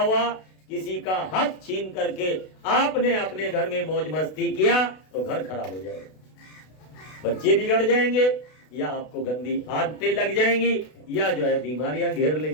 किसी का हक छीन करके आपने अपने घर में मौज मस्ती किया तो घर खराब हो जाएगा, बच्चे बिगड़ जाएंगे, या आपको गंदी आदतें लग जाएंगी, या जो है बीमारियां घेर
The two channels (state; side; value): late; right; 32 ms